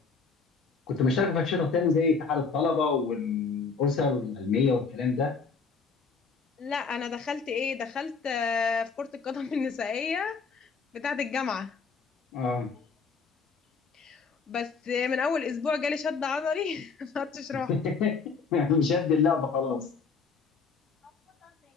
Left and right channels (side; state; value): right; quieter; 5.0 dB